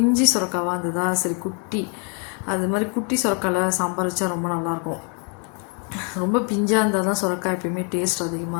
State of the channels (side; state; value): right; quieter; 38.8 dB